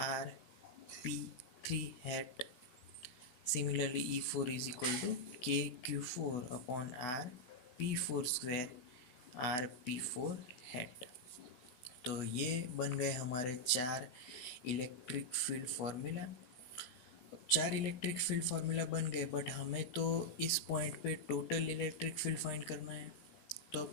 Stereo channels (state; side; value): late; right; 16 ms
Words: RP3 hat. Similarly E4 is equal to K Q4 upon RP4 square RP4 head. तो ये बन गए हमारे चार इलेक्ट्रिक फील्ड फार्मूला। चार इलेक्ट्रिक फील्ड फार्मूला बन गए, but हमें तो इस पॉइंट पे टोटल इलेक्ट्रिक फील्ड फाइंड करना है। तो